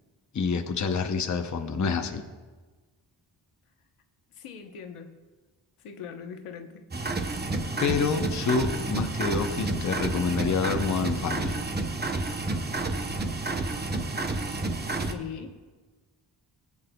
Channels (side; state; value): both; normal; correlation 0.40